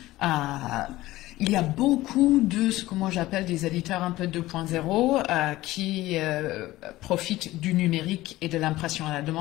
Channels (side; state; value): right; quieter; 17.2 dB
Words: Il y a beaucoup de ce que moi j'appelle des éditeurs un peu 2.0 qui profitent du numérique et de l'impression à la